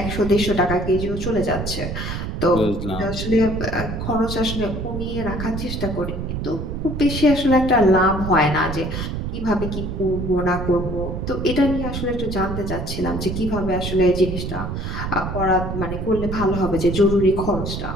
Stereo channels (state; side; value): noise; right; rumble, 5 dB below the sound